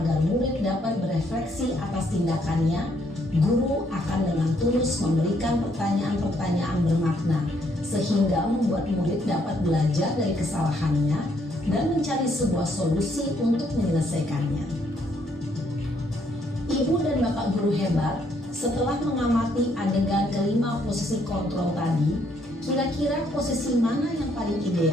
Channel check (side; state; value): both; normal; correlation 0.70